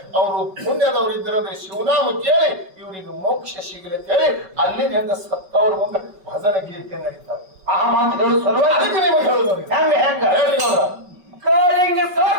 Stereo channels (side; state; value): left; late; 5.3 ms